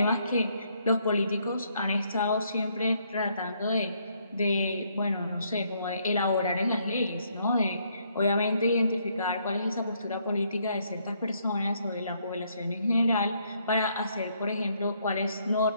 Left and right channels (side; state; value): both; inverted; correlation -0.71